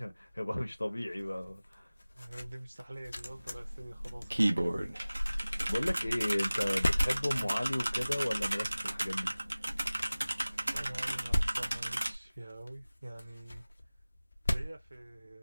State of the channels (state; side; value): inverted; both; correlation -0.99